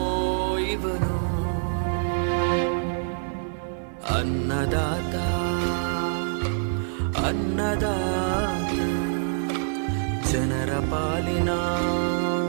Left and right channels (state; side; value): silent; left; 56 dB below the other